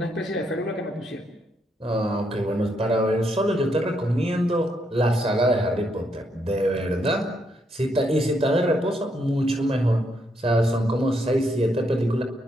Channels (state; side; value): normal; both; correlation 0.77